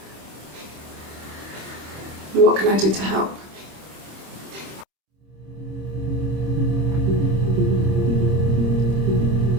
What can I do to help?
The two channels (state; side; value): late; left; 26 ms